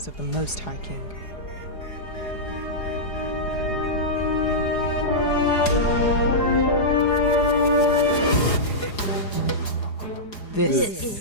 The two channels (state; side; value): late; right; 4.8 ms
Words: of the Most High King.